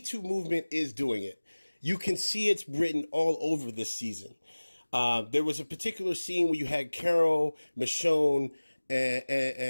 movement is doing it. You can see it's written all over this season. There was a particular scene where you had Carol, Michonne,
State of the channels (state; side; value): inverted; both; correlation -1.00